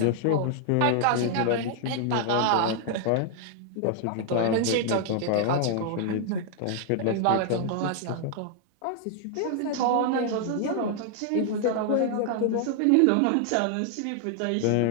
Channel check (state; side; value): different; both; correlation 0.00